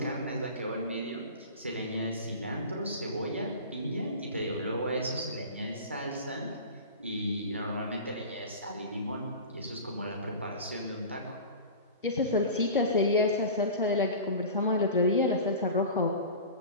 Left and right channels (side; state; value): both; inverted; correlation -0.34